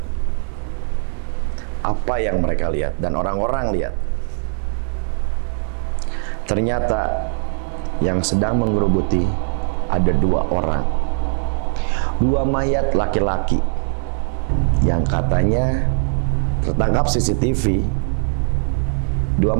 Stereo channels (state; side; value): silent; left; digital silence